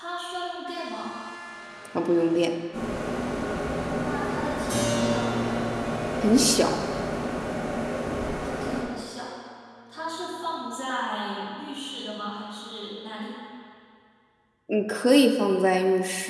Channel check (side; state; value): both; identical; correlation 1.00